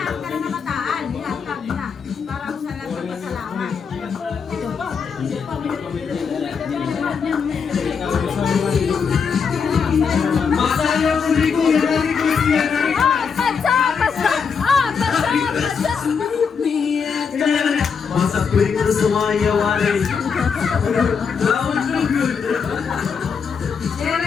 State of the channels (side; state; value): right; quieter; 6.1 dB